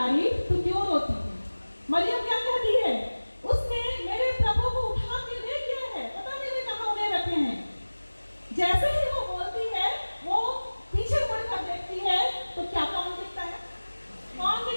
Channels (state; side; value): inverted; both; correlation -1.00